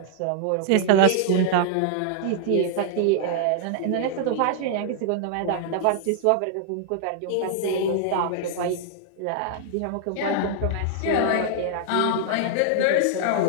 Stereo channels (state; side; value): different; both; correlation -0.01